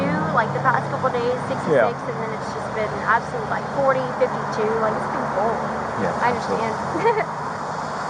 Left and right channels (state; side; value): identical; both; correlation 1.00